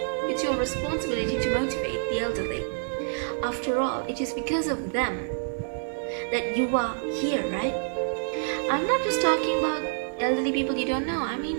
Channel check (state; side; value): silent; left; 59 dB below the other